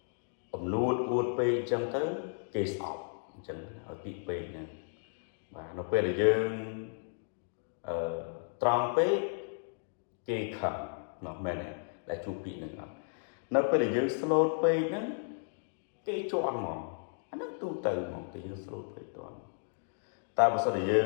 អំនួតអួតពេកអញ្ចឹងទៅគេស្អប់អញ្ចឹងឲ្យពីពេកហ្នឹងបាទនៅពេលដែលយើងត្រង់ពេកគេខឹងនោះមែនទេដែលជួបពីហ្នឹងអត់នៅពេលដែលយើងស្លូតពេកហ្នឹងគេជន់ហ្មងអាហ្នឹងទូទៅហ្មងគេយើងស្លូតពេកតន់តែបើសិនជាយើ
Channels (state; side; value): silent; right; digital silence